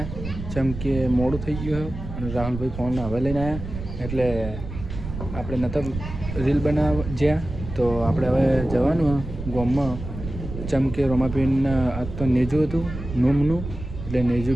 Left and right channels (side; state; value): right; noise; rumble, 9 dB below the sound